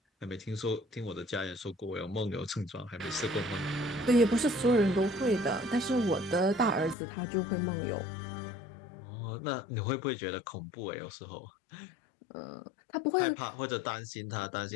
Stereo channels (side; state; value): right; drops out; at 7.0 s